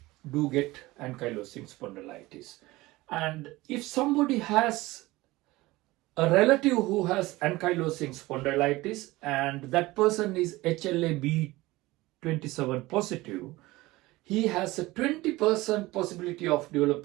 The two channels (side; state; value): left; quieter; 19.7 dB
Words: do get ankylosing spondylitis. And if somebody has a relative who has ankylosing spondylitis and that person is HLA-B27 positive, he has a 20% possibility of